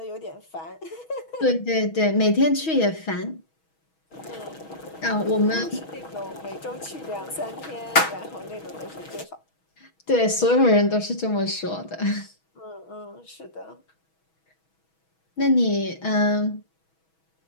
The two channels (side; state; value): right; late; 6.2 ms